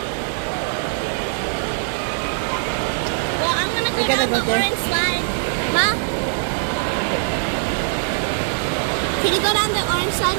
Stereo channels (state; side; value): silent; left; 64 dB below the other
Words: Well, I'm gonna go We're gonna down go the there. orange slide. Ma? Can you go down the orange slide